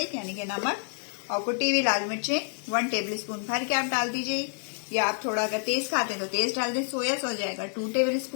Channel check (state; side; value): silent; right; 55 dB below the other